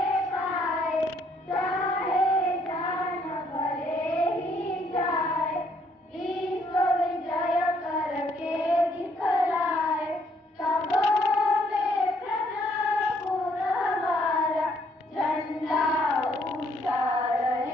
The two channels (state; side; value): normal; both; correlation 0.68